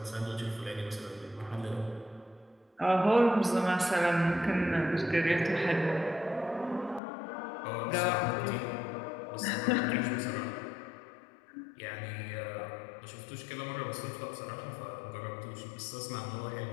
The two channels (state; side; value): drops out; right; at 7.0 s